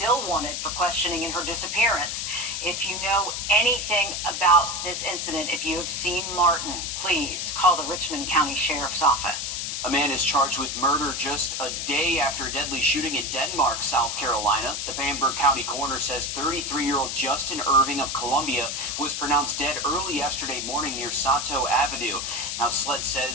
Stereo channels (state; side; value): noise; left; hiss, 3 dB below the sound